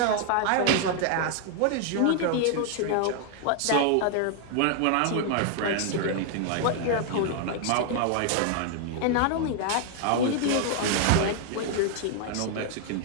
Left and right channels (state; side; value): different; both; correlation 0.00